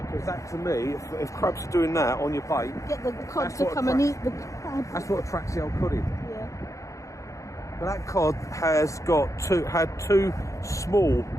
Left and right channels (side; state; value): right; late; 0.15 ms